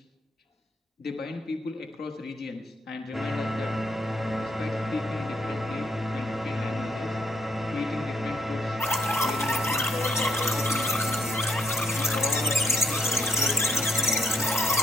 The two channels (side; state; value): both; normal; correlation 0.75